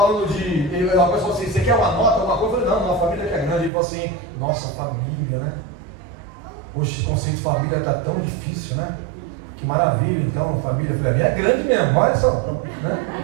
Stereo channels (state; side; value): drops out; left; at 3.7 s